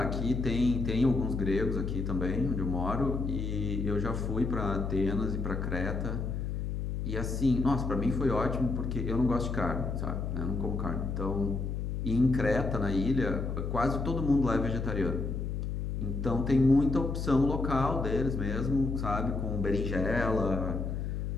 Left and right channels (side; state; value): left; noise; hum, 3 dB below the sound